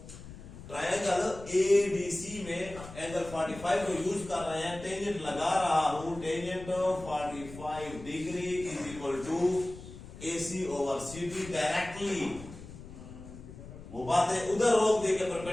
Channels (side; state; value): left; noise; rumble, 15 dB below the sound